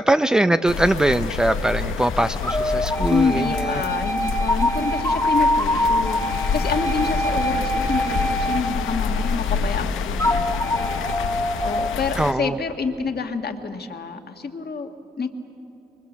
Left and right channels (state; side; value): normal; both; correlation 0.72